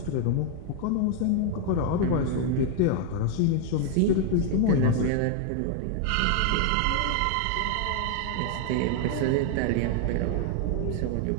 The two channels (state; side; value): different; both; correlation 0.00